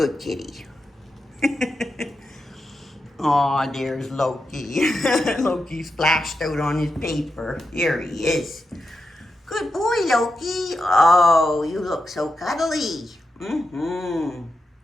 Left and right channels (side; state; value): both; normal; correlation 0.88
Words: kitty. Aw, there's Loki. Loki splashed out on his paper. Here he is. Good boy, Loki. Oh, you look so cuddly.